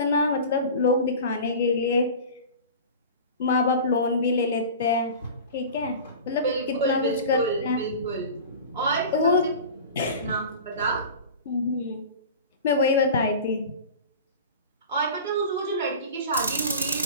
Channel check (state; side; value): inverted; both; correlation -0.35